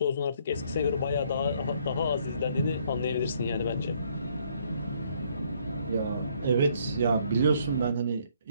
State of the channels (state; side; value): inverted; both; correlation -0.66